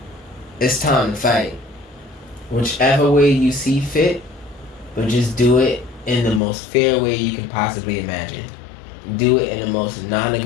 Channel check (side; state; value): right; drops out; at 6.4 s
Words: It's time to fight. Whichever way you see fit, but just do it in the most fair way you can possibly imagine. Do it in the most